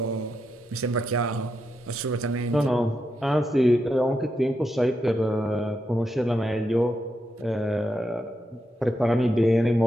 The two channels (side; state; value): both; normal; correlation 0.84